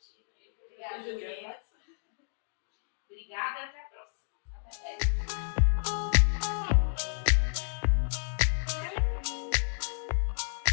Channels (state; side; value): silent; right; digital silence